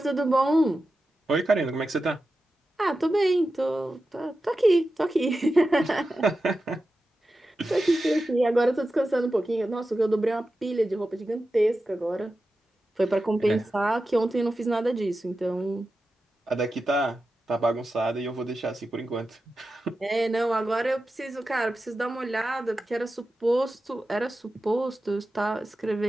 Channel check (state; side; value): normal; both; correlation 0.92